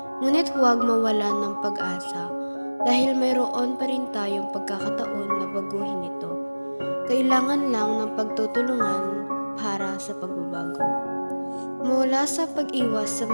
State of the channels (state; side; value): inverted; both; correlation -1.00